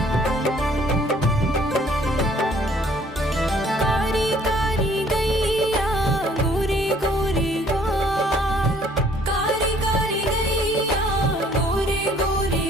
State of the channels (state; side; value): normal; both; correlation 0.59